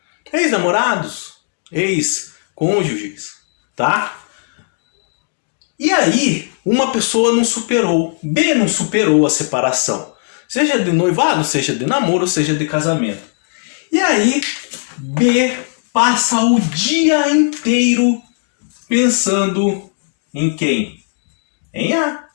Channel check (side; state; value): right; silent; digital silence